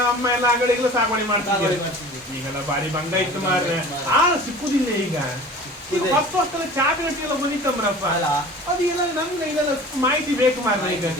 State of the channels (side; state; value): both; normal; correlation 0.41